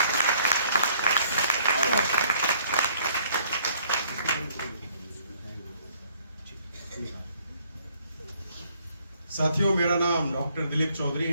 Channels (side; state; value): both; inverted; correlation -0.63